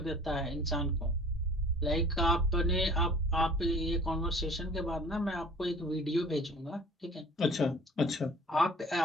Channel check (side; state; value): both; normal; correlation 0.48